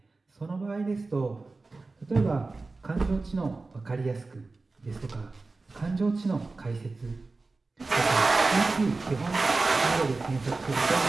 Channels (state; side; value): quieter; left; 3.6 dB